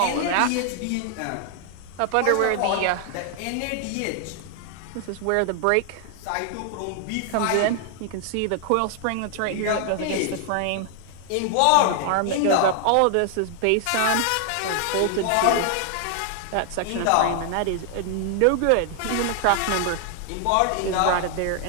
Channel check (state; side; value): different; both; correlation 0.00